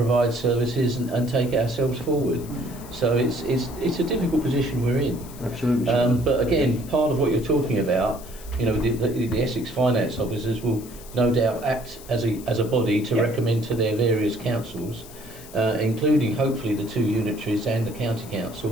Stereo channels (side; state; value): left; noise; hiss, 18 dB below the sound